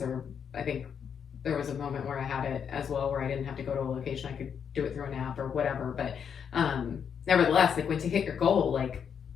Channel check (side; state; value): right; quieter; 7.4 dB